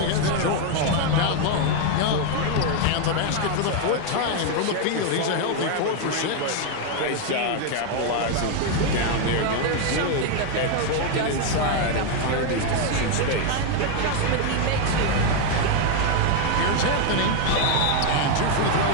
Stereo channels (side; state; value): both; different; correlation 0.01